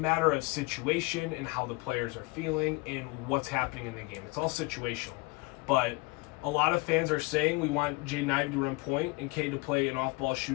of situation and how the players are feeling and what's happening in the game. It's all situational. But a lot of fans are saying we want Jaden Ivey to run point and Cade to play an off-ball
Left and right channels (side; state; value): right; quieter; 26.0 dB